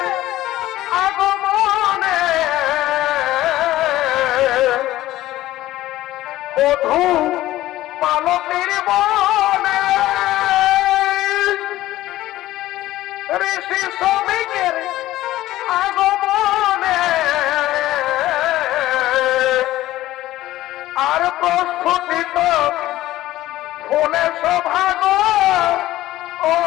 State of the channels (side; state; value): right; quieter; 15.5 dB